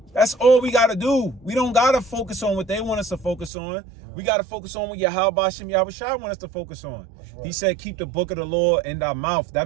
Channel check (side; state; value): left; drops out; at 3.5 s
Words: That's all we gotta do. We don't gotta focus on what they want us to focus on. Yeah. We gotta focus on what Yahweh Shai want us to focus on. Right. He said, keep the book of the law in thy mouth. That